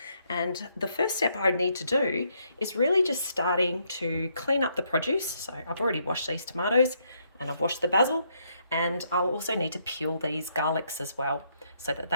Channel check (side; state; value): both; inverted; correlation -0.74